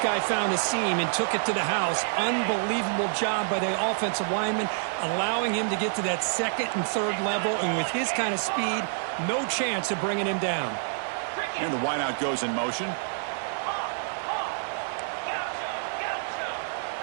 guy found a seam and took it to the house. Unbelievable job by the offensive lineman, allowing him to get to that second and third level. And with his kind of speed, no chance of bringing him down. And the wideout goes in motion.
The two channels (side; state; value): left; silent; digital silence